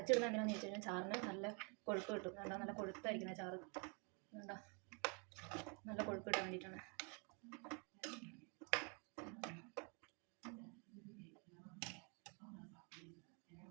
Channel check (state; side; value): quieter; left; 35.4 dB